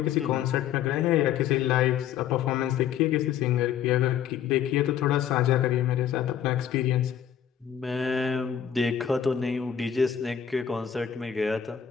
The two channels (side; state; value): right; quieter; 9.1 dB